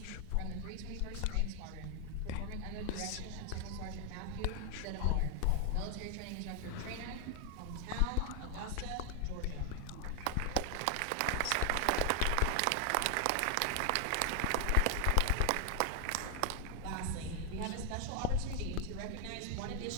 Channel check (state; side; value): different; both; correlation 0.00